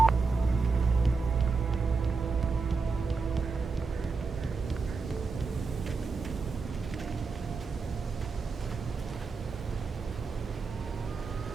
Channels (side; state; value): left; quieter; 4.5 dB